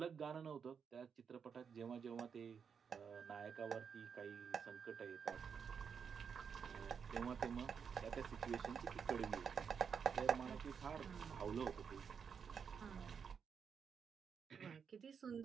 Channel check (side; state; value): left; quieter; 6.6 dB